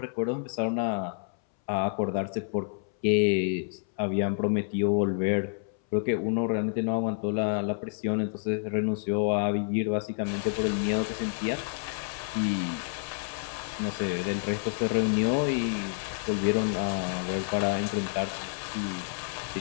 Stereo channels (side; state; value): right; silent; 59 dB below the other